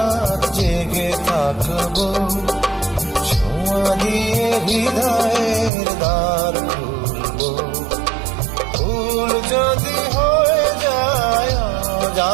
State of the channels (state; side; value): drops out; left; at 5.7 s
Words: জেগে থাকবো ছোঁয়া দিয়ে হৃদয়ের দ্বার খুলবো। ভুল যদি হয়ে যায়